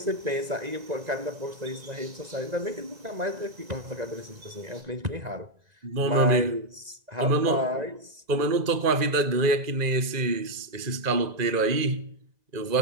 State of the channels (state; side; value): late; left; 2.0 ms